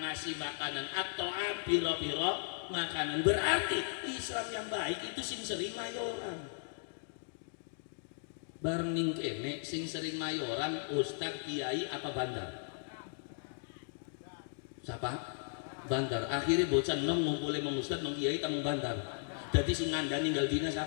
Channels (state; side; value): silent; right; digital silence